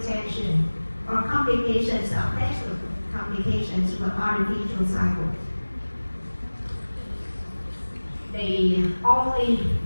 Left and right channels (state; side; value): inverted; both; correlation -1.00